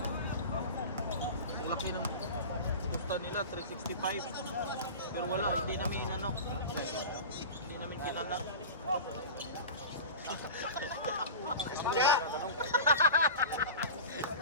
Ang laki ng Gusto nila 365. Pero wala, hindi namin ano. Hindi namin kinala.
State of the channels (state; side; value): inverted; both; correlation -0.32